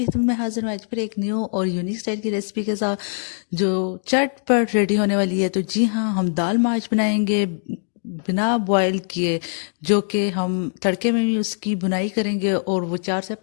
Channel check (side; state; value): right; silent; digital silence